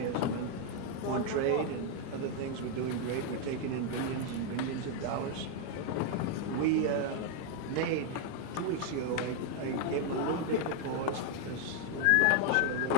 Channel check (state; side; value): different; both; correlation 0.00